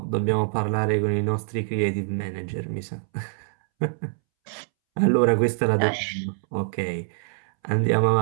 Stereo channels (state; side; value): silent; left; 62 dB below the other